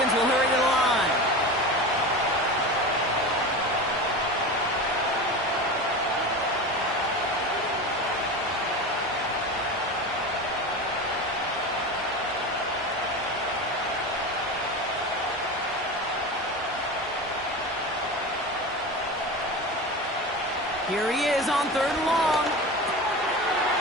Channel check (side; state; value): both; normal; correlation 0.27